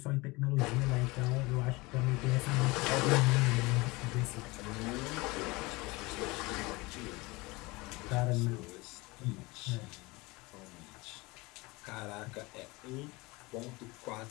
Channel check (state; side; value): quieter; right; 23.6 dB